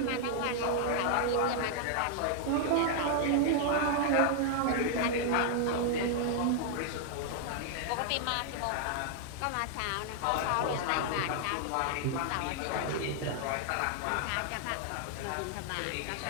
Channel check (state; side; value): different; both; correlation 0.00